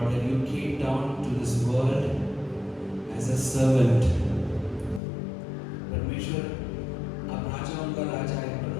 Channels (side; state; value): right; drops out; at 5.0 s